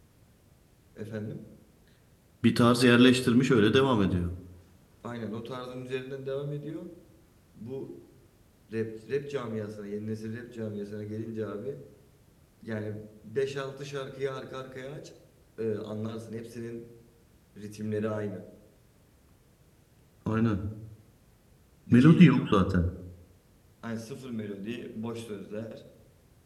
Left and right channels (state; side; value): identical; both; correlation 1.00